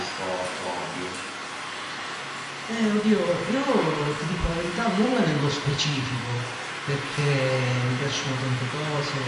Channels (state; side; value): identical; both; correlation 1.00